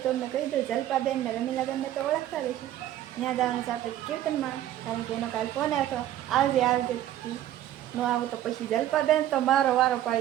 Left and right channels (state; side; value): quieter; left; 12.7 dB